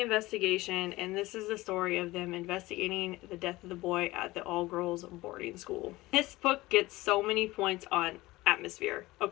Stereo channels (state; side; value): quieter; right; 19.3 dB